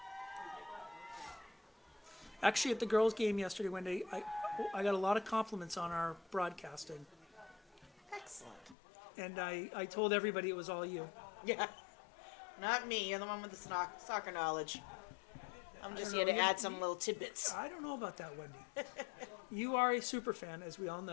Actually, at the girls' game yesterday, Wendy, I got a lot of compliments on our broadcasting, Excellent. and I told everybody it was all you. Yeah. Not me. You're the one with the soccer knowledge. I'm just don't here know, to add some little tidbits. I don't know about that, Wendy. You are a super fan, as we all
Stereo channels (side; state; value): right; drops out; at 8.8 s